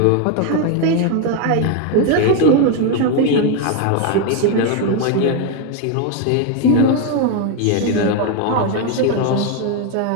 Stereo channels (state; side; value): different; both; correlation 0.01